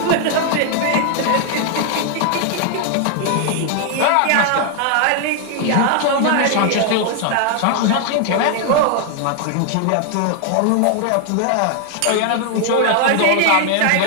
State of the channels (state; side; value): different; both; correlation 0.00